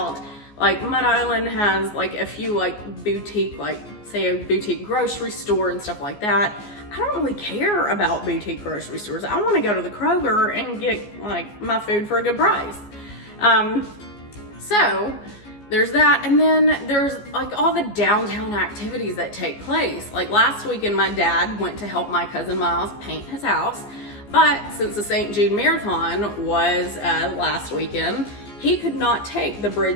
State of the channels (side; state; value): right; late; 14 ms